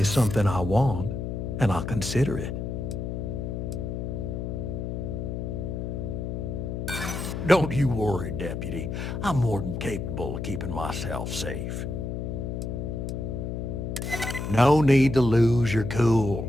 something I want, and I'll consider it. Don't you worry, Deputy. I'm more than capable of keeping myself safe. No need to lose your cool.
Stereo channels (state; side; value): noise; left; hum, 4 dB below the sound